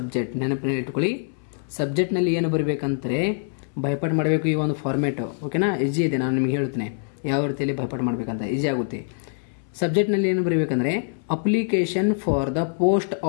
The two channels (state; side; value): silent; right; 62 dB below the other